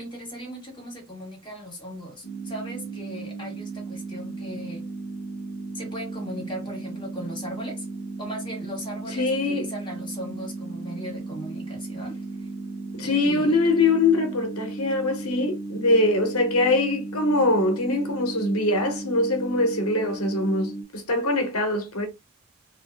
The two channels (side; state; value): both; normal; correlation 0.12